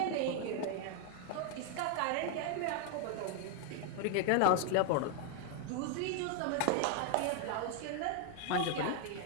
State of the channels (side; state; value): both; different; correlation 0.00